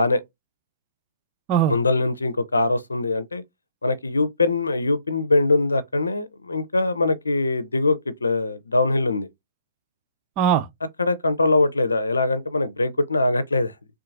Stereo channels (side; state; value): both; inverted; correlation -0.74